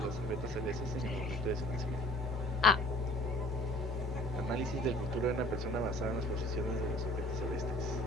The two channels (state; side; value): normal; both; correlation 0.53